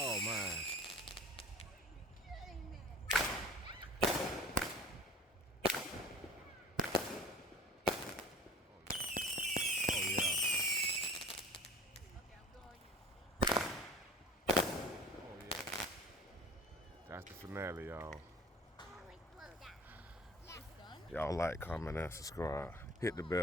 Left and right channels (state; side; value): normal; both; correlation 0.44